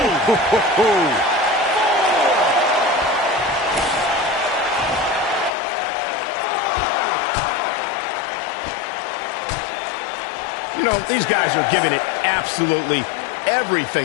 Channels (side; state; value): right; drops out; at 5.5 s